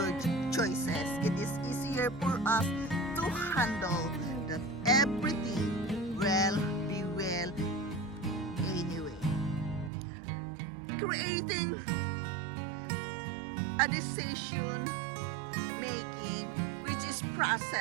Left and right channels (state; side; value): drops out; left; at 9.9 s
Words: It is easier for us to handle that everything will be well anyway. Creating a decision making which is